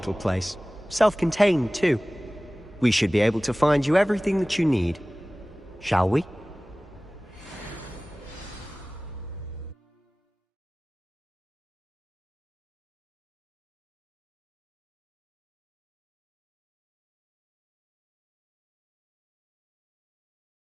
place. Self-contained, too. We should be able to find you everything that you need. Shall we?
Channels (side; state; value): both; normal; correlation 0.98